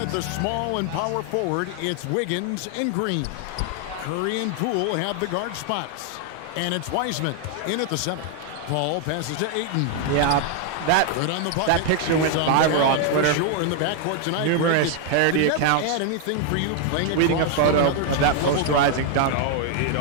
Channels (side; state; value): both; different; correlation 0.00